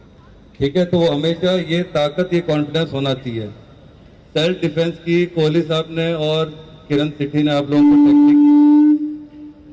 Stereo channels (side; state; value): both; identical; correlation 1.00